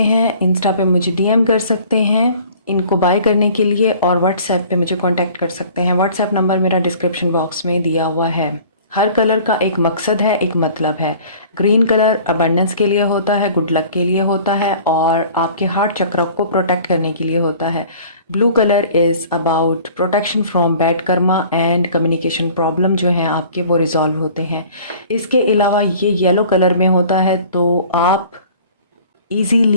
हैं, इंस्टा पे मुझे डीएम कर सकते हैं इनको बाय करने के लिए और व्हाट्सएप पे मुझे कांटेक्ट कर सकते हैं। व्हाट्सएप नंबर मेरा डिस्क्रिप्शन बॉक्स में दिया हुआ है। हर कलर का एक मकसद है, एक मतलब है। ग्रीन कलर अबंडेंस के लिए होता है, गुड लक के लिए होता है और आपके हार्ट चक्र को प्रोटेक्ट करने के लिए होता है। Blue colour is about protection from bad Karma and communication problem जो हैं आपके वो रिजॉल्व होते हैं। इसके अलावा ये येलो कलर में होता है तो आप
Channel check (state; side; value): inverted; both; correlation -0.48